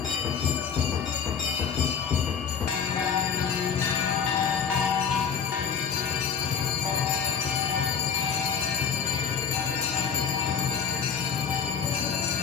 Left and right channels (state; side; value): quieter; right; 6.9 dB